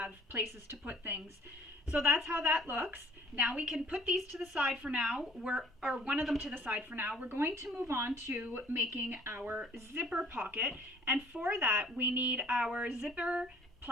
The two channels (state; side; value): normal; both; correlation 0.55